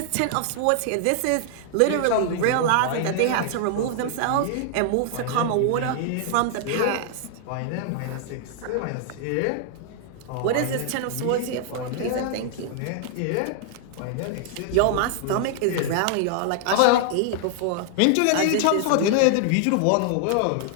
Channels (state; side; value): different; both; correlation 0.00